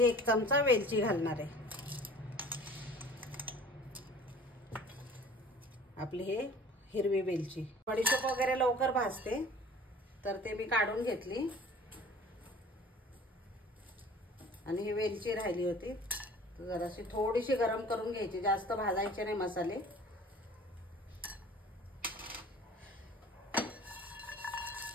1 चमचा वेलची घालणार आहे। आपली हे हिरवी वेलची। बडीशोप वगैरे लवकर भाजते, तर ते मी काढून घेतली, आणि ही वेलची राहिली होती, जराशी थोडीशी गरम करून घ्यायची, जास्त भाजायचे नाही मसाले।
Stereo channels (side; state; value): both; normal; correlation 0.46